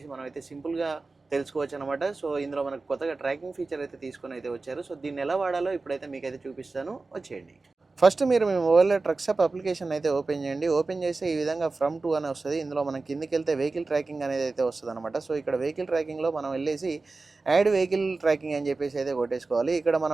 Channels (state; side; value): quieter; left; 3.7 dB